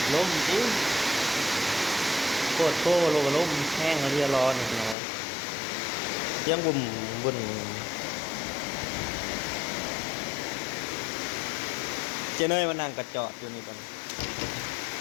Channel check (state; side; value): drops out; right; at 5.0 s